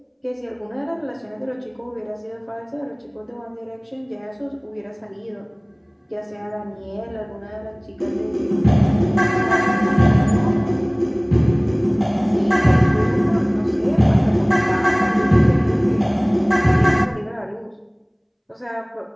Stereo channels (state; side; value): identical; both; correlation 1.00